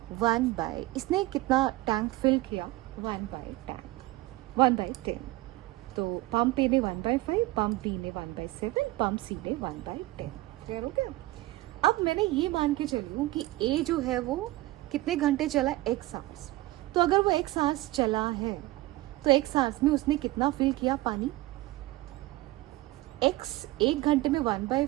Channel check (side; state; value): left; quieter; 18.5 dB